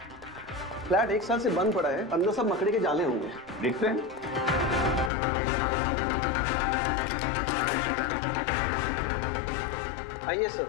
फ्लैट 1 साल से बंद पड़ा है, अंदर सब मकड़ी के जाले होंगे। दिखते हैं? आइए सर,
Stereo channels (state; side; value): drops out; right; at 5.1 s